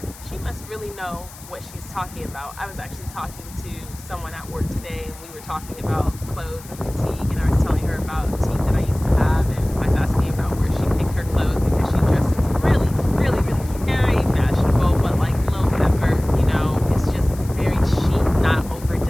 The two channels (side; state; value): left; noise; hiss, 19 dB below the sound